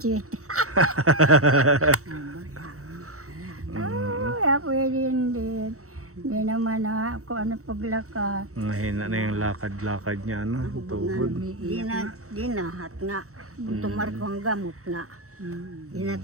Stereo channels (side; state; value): left; late; 0.64 ms